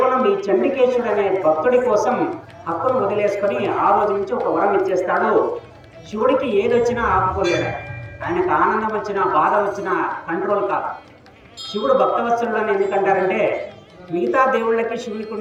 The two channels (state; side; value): identical; both; correlation 1.00